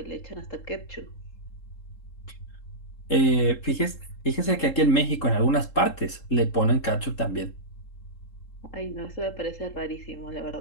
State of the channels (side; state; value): right; late; 3.7 ms